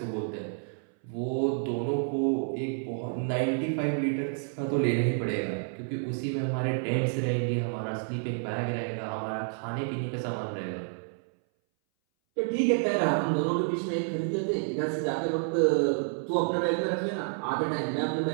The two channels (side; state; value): left; silent; 58 dB below the other